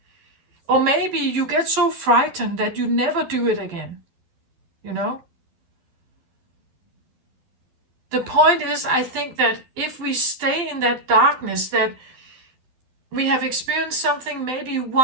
Or maybe you get so frightened that you never do it again, The point is, I think that if we stay in that darkness, that we have experienced something maybe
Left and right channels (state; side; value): late; left; 12 ms